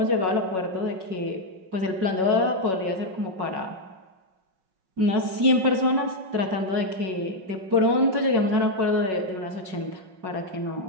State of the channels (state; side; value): late; left; 5.4 ms